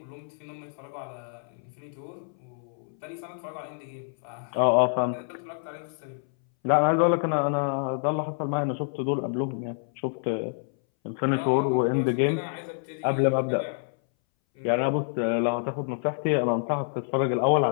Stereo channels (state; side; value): silent; right; 60 dB below the other